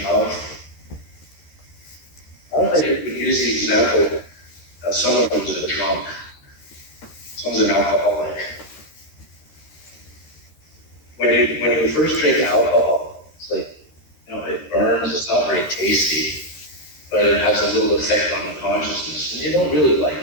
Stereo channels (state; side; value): late; right; 13 ms